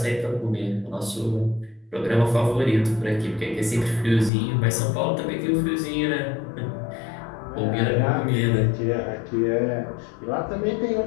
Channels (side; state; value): right; drops out; at 4.3 s